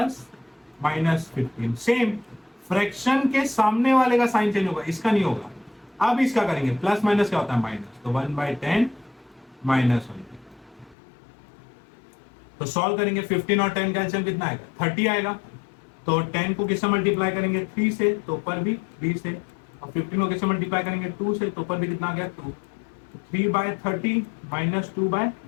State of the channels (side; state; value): right; drops out; at 11.0 s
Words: -15। Same fraction के सामने वाले का साइन चेंज होगा, इसका नहीं होगा। अब इसका करेंगे, प्लस माइनस क्या होता है? माइनस, तो 1/10 -1। तो सॉल्व करेंगे, 15 और 10 का एलसीएम कितना आएगा? 30 आएगा। तो 10 को किससे मल्टीप्लाई करेंगे? 3 से, तो ऊपर भी 3 से, और 15 को किससे मल्टीप्लाई करेंगे? 2 से, तो ऊपर भी कितना आ गया? 2। 3/30 -